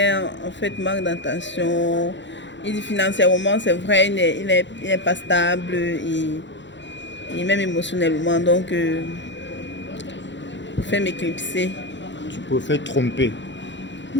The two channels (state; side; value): late; right; 0.53 ms